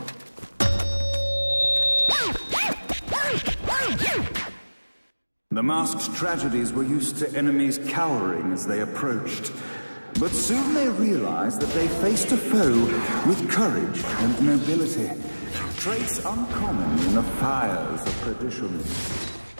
The masked tragedies were used to enemies cowering as they approached. But soon they realized that they faced a foe with courage and nobility, traits uncommon in the fires of perdition.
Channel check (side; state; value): both; inverted; correlation -1.00